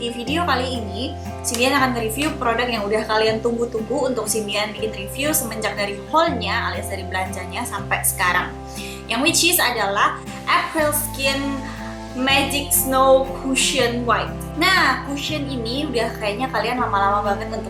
di video kali ini Cindian akan review produk yang udah kalian tunggu-tunggu untuk Cindian bikin review semenjak dari haulnya alias dari belanjanya sampai sekarang. Yang which is adalah April Skin Magic Snow Cushion White. Nah, cushion ini udah kayaknya kalian lama-lama banget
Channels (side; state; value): both; identical; correlation 1.00